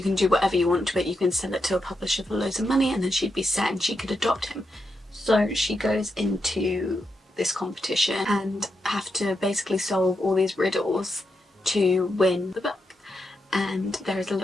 can do whatever you want to it. You can sell it to a publisher for loads of money, and then she'd be set and she could adopt him. So she goes into this competition and have to basically solve all these riddles to win the book. And there is a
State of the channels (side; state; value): both; normal; correlation 0.85